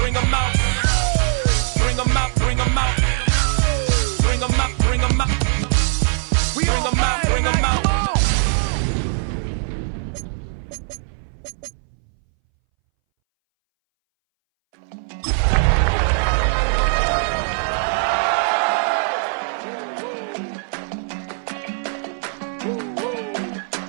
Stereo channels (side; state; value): left; silent; 63 dB below the other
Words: 'em out. Bring 'em out, bring 'em out. Bring 'em out, bring 'em out. Bring 'em out, bring 'em out.